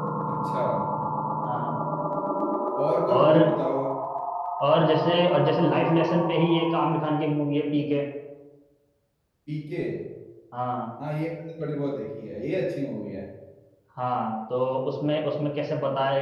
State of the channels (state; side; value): identical; both; correlation 1.00